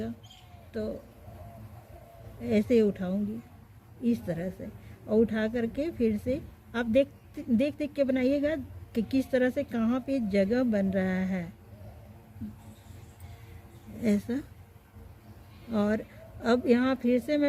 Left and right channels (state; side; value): identical; both; correlation 1.00